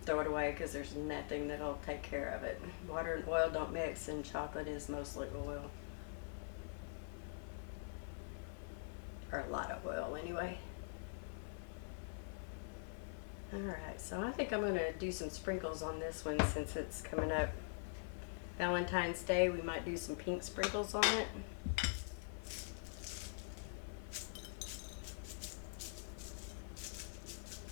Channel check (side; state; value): right; silent; digital silence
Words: throw it away because there's nothing that'll take care of it. Water and oil don't mix, and chocolate is mostly oil. Or a lot of oil anyway. Alright, so I think I'm going to do some sprinkles on this one since it's coming up Valentine's Day. We might do some pink sprinkles on it.